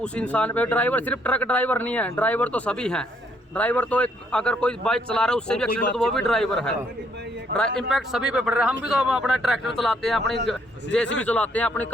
इंसान पे, ड्राइवर सिर्फ ट्रक ड्राइवर नहीं है, ड्राइवर तो सभी हैं। ड्राइवर तो एक अगर कोई बाइक चला रहा है उससे भी एक्सीडेंट तो वो भी ड्राइवर है। इम्पैक्ट सभी पे पड़ रहा है। हम भी तो अपना ट्रैक्टर चलाते हैं, अपनी जेसीबी चलाते हैं, अपनी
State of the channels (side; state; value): both; normal; correlation 0.69